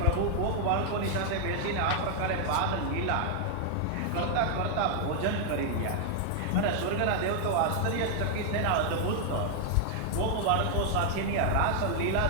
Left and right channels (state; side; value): different; both; correlation 0.00